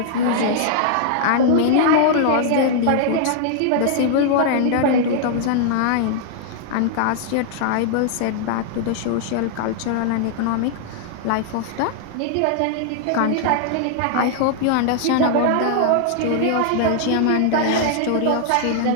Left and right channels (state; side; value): different; both; correlation -0.01